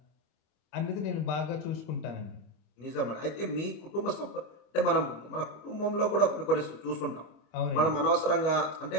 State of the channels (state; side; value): late; right; 25 ms